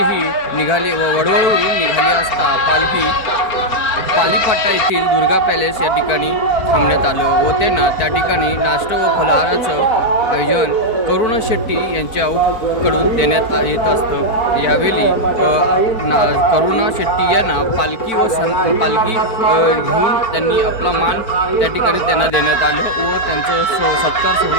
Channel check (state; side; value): late; right; 4.5 ms